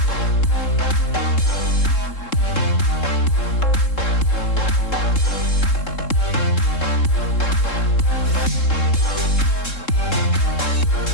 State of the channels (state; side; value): late; right; 3.7 ms